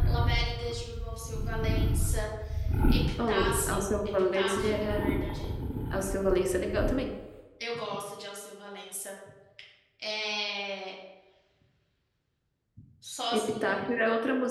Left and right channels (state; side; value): identical; both; correlation 1.00